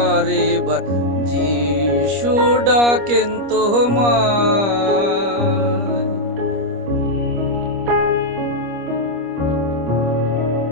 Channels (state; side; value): late; left; 25 ms